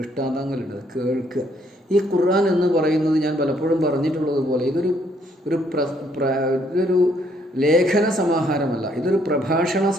കേൾക്കുക. ഈ ഖുർആൻ എന്ന് പറയുന്നത് ഞാൻ പലപ്പോഴും പറഞ്ഞിട്ടുള്ളത് പോലെ ഇതൊരു ലേഖന സമാഹാരമല്ല, ഇതൊരു പ്രഭാഷണ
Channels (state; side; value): normal; both; correlation 0.68